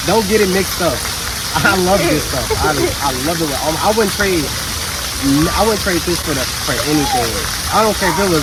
Don't get it mixed up. I love this stuff. I love it. I wouldn't trade this for anything. I don't care if it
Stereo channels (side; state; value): both; identical; correlation 1.00